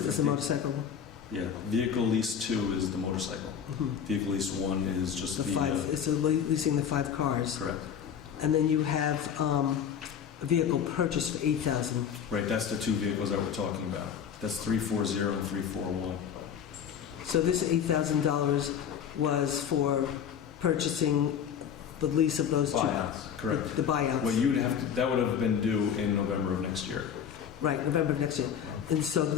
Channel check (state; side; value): quieter; right; 8.1 dB